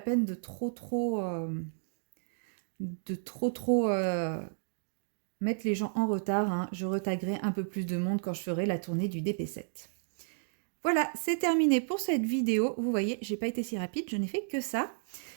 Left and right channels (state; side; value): silent; left; digital silence